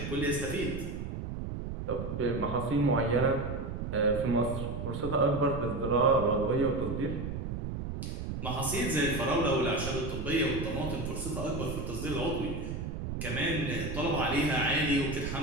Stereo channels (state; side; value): noise; right; rumble, 5 dB below the sound